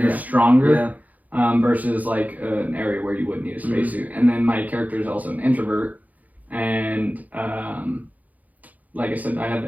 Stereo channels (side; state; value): left; late; 0.078 ms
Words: stronger versus like an area where you would need a spacesuit. And then my character is also an introvert, and like I said, I have